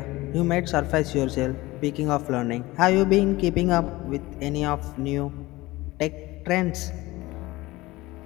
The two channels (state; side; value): quieter; right; 19.7 dB